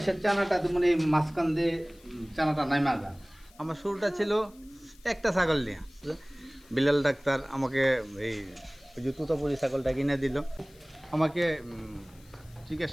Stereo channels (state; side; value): noise; left; hiss, 27 dB below the sound